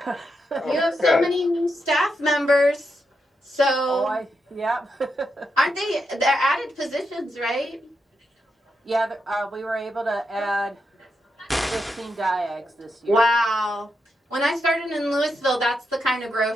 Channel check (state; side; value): normal; both; correlation 0.84